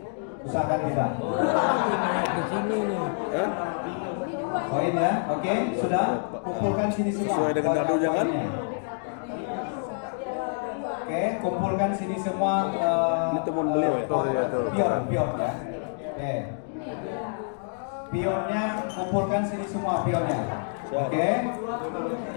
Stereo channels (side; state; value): right; silent; digital silence